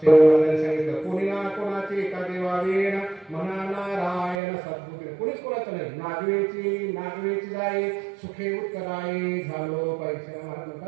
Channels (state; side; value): drops out; left; at 4.4 s